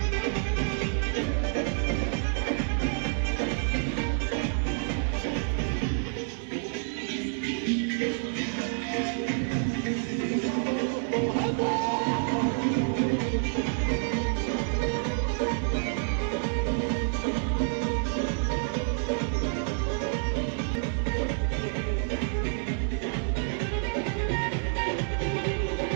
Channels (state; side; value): silent; left; 59 dB below the other